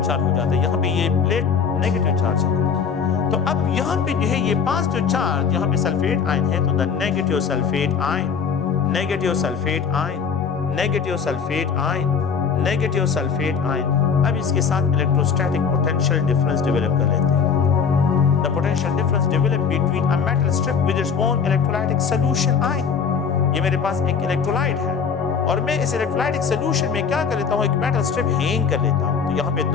हो जाता है, यहाँ पे ये प्लेट नेगेटिव चार्ज है। तो अब यहाँ पे जो है ये पॉजिटिव चार्ज, यहाँ पे सल्फेट आयन है तो the negative sulphate ion, negative sulphate ion, negative sulphate ion, negative sulphate ion. अब इसके साथ इलेक्ट्रोस्टैटिक पोटेंशियल डिफरेंस डेवलप कर लेते हैं। The potential difference developed between a metal strip with its own electrolytic solution ion. ये मेरे पास एक electrolyte है और मैं इस इलेक्ट्रोलाइटिक सोल्यूशन में क्या कर लेता हूँ, एक मेटल स्ट्रिप हैंग कर लेता हूँ। तो यहाँ पे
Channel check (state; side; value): quieter; right; 6.3 dB